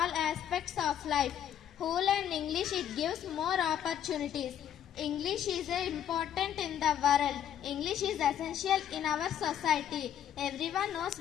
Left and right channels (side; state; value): right; quieter; 9.9 dB